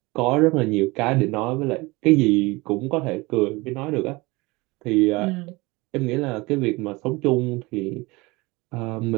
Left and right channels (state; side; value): quieter; left; 23.2 dB